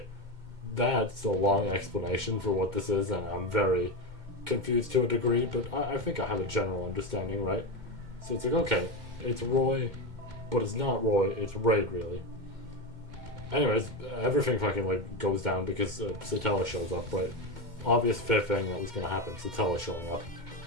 that's a long explanation for what this is, and I'm very confused to a degree, but I think I have a general understanding, right? So it's like, okay, it's Roy, but it's not Roy, it's Raid, really. Anyways, everything fucking like goes down because Satella shows up, right? Obvious fifth thing that was gonna happen, Satella showing up.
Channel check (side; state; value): left; late; 2.1 ms